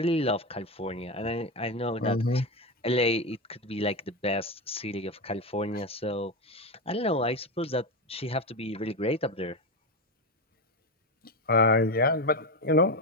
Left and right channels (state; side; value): normal; both; correlation 0.14